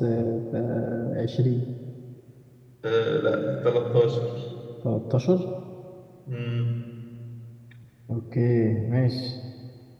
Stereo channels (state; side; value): identical; both; correlation 1.00